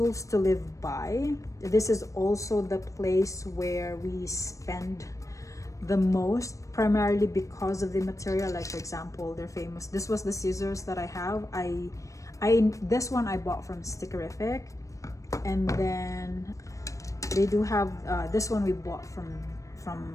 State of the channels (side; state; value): right; late; 0.16 ms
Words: to Live By. This is also the place where we spend the most, primarily because of the material. Like, for example, they're famous. This was the scissors that I have. This one I bought from Stickerific, and then they do have this one we bought from